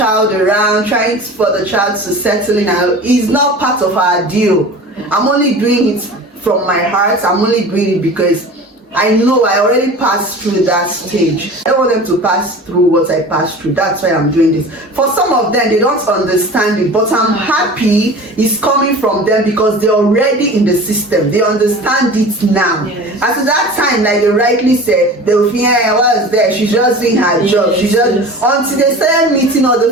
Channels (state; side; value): normal; both; correlation 0.38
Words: around, trying for the child to settle in is not part of our deal. I'm only doing it from my heart. I'm only doing it because I know I already passed through that stage. I don't want them to pass through what I passed through. That's why I'm doing this. For some of them, they don't understand it, but I'm happy it's coming from them because they're already in the system. They understand it now. Yes. At that time, like they rightly said, they will think, hey, what was there? She's just doing her job. She just until they started meeting other